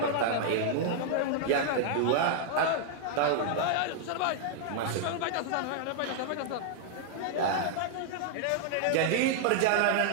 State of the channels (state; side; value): different; both; correlation -0.01